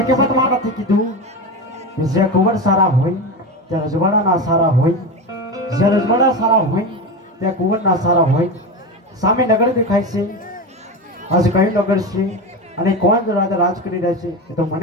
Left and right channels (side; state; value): both; normal; correlation 0.21